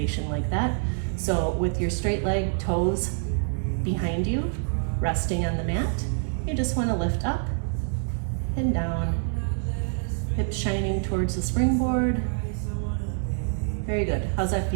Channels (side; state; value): left; silent; digital silence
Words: like that. So with your straight leg, toes behind you, resting on the mat, you just want to lift up and down, hips shining towards the springboard. Very good. How's that